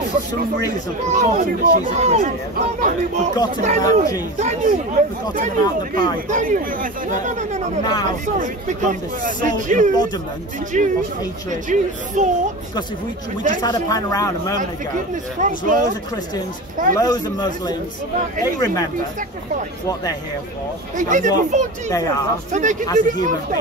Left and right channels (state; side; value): normal; both; correlation 0.29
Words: for some reason, forgotten that she's a Christian, forgotten about Jesus, forgotten about the Bible, but now has become the sole embodiment of hatred. Because if we just had a pan around a moment ago, there's loads of Christians, loads of Muslims, they remember what they're here for, and what they are as a human